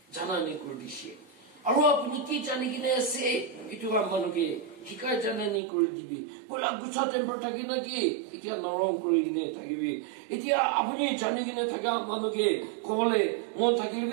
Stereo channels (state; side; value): drops out; left; at 5.6 s